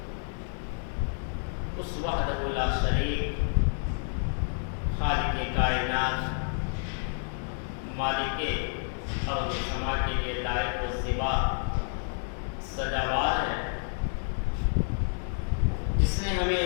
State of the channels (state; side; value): silent; right; digital silence